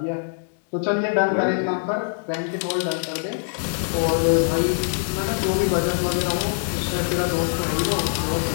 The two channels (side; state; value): right; silent; 61 dB below the other